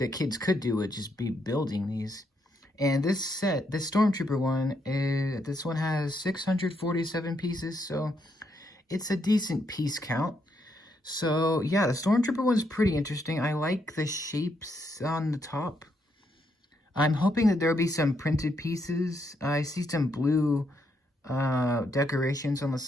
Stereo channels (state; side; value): normal; both; correlation 0.77